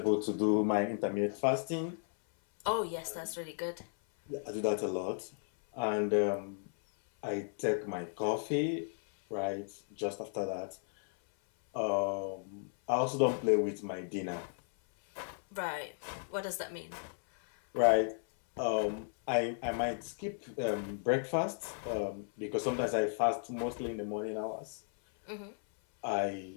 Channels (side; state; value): right; silent; 55 dB below the other